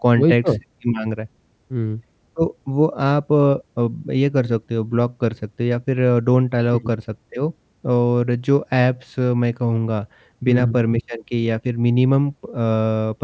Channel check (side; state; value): both; identical; correlation 1.00